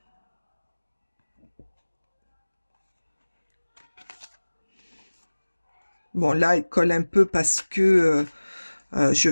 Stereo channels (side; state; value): both; inverted; correlation -1.00